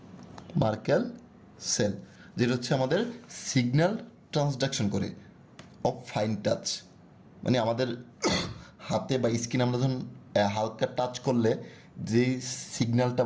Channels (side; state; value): both; identical; correlation 1.00